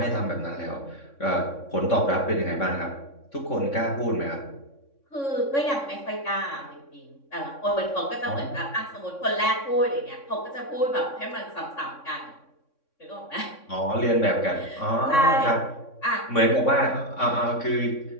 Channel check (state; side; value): late; right; 3.6 ms